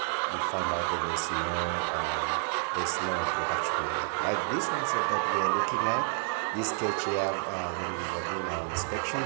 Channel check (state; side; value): silent; left; 58 dB below the other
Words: find out that there's no production there. Like this one that we are looking at, this cage here, when we were doing our inspection,